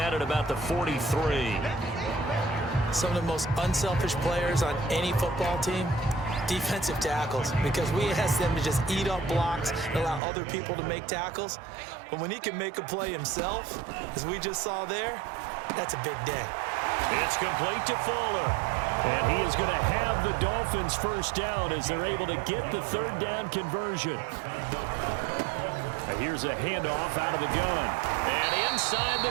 at about the 43. Some of the most unselfish players on any football team, defensive tackles, because we ask them to just eat up blocks and allow other people to make tackles. But when he can make a play himself, as we just saw there, that's a big day. It's complete to Fuller. And he is going to have the Dolphins first down as they're able to get the third down conversion. Here's a handoff out of the gun. And inside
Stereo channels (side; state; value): left; drops out; at 10.2 s